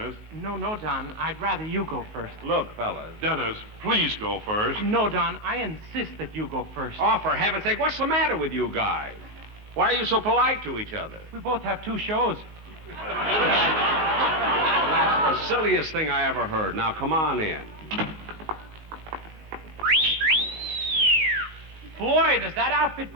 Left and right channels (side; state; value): left; late; 19 ms